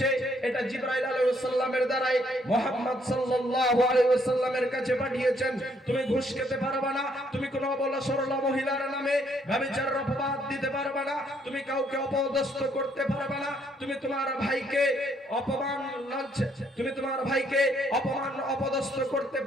এটা জিবরাইল আলাইহিস সালামের দ্বারাই মুহাম্মদ সাল্লাল্লাহু আলাইহি ওয়াসাল্লামের কাছে পাঠিয়েছেন। তুমি ঘুষ খেতে পারবে না, তুমি কোনো অবলা সরলা মহিলার নামে ব্যভিচারের অপবাদ দিতে পারবে না, তুমি কাউকে অপদস্থ করতে পারবে না, তুমি তোমার ভাইকে অপমান অপদস্থ করতে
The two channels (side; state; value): both; normal; correlation 0.69